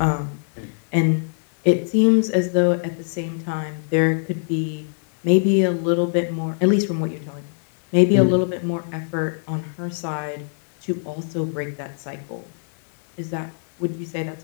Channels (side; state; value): right; silent; 64 dB below the other